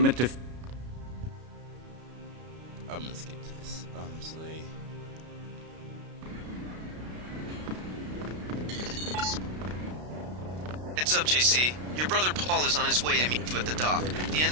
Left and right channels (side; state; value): left; late; 33 ms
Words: to... I'm gonna skip this, honestly. Heads up, JC. Your brother Paul is on his way to meet you at the dock. The